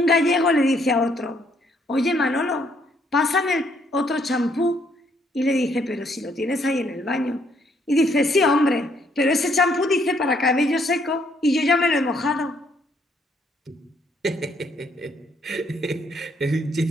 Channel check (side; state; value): both; normal; correlation 0.69